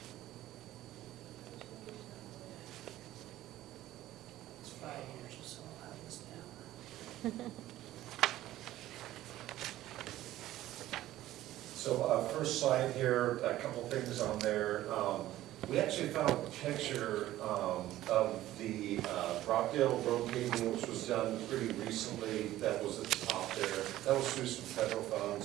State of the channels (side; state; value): left; quieter; 14.6 dB